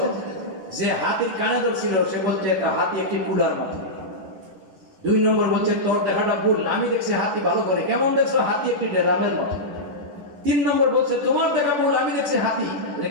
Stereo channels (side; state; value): left; late; 10 ms